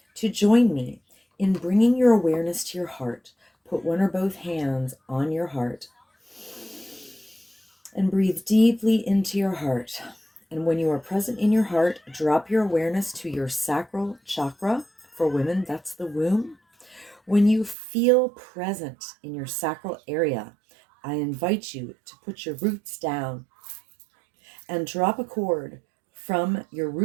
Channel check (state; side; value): drops out; left; at 17.8 s